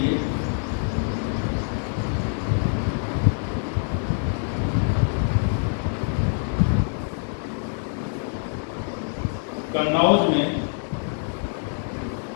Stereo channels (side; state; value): right; silent; 62 dB below the other